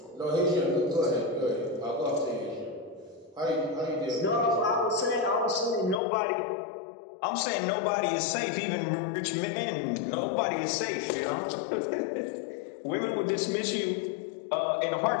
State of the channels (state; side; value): drops out; right; at 6.0 s